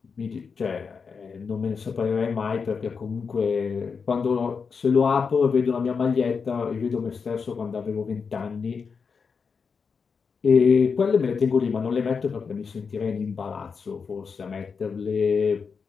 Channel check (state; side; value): quieter; right; 5.6 dB